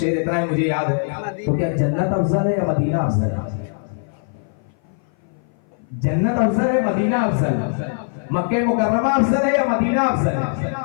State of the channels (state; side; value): silent; right; 58 dB below the other